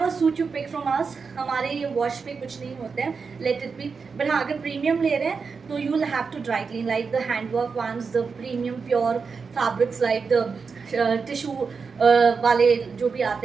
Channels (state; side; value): quieter; left; 5.2 dB